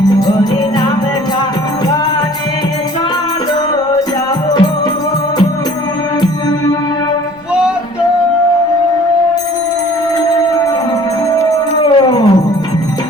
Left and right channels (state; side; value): noise; right; rumble, 29 dB below the sound